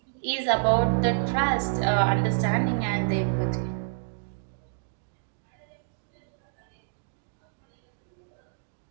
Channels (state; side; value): silent; left; digital silence